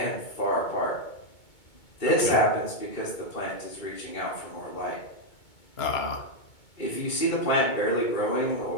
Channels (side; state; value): right; late; 2.2 ms